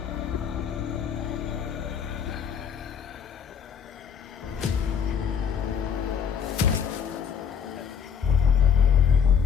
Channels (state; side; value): quieter; right; 7.4 dB